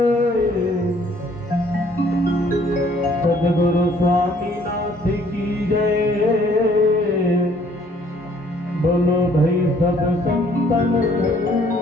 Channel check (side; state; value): both; normal; correlation 0.61